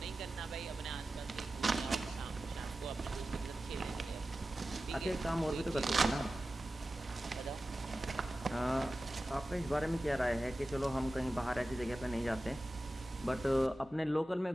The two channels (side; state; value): both; normal; correlation 0.95